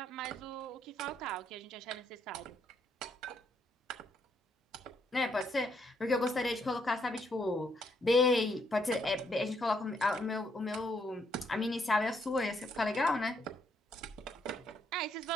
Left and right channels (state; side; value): normal; both; correlation 0.73